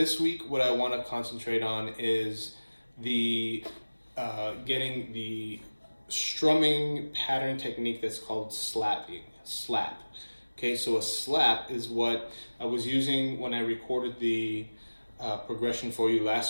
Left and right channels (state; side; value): inverted; both; correlation -1.00